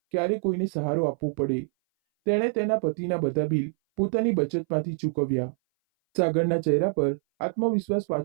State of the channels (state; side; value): silent; left; 58 dB below the other